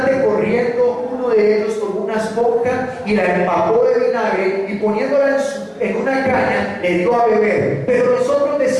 corriendo, uno de ellos tomó una esponja y la empapó de vinagre y poniéndola en una caña le dio a beber. Pero los otros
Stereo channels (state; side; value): identical; both; correlation 1.00